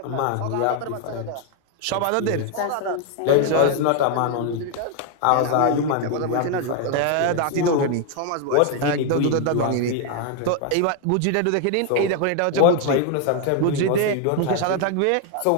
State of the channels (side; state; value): both; different; correlation 0.01